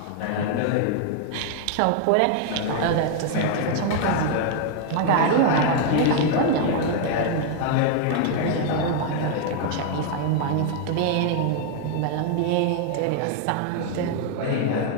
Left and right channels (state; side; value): different; both; correlation 0.00